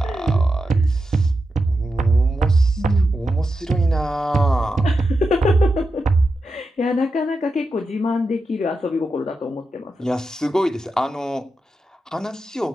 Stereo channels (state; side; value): normal; both; correlation 0.89